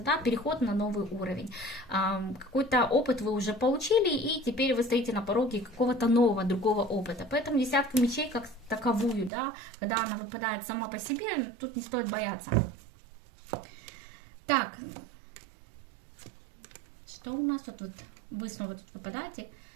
да, переход на новый уровень. Какой-то опыт вы уже получили, и теперь вы стоите на пороге какого-то нового, другого опыта. Поэтому десятка мечей как таковую, да, когда она выпадает сама по себе, тут не стоит бояться. Так, что у нас тут вот, вы снова тут выпадаете.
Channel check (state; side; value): drops out; left; at 9.3 s